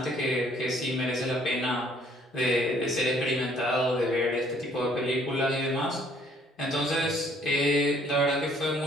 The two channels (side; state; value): both; normal; correlation 0.62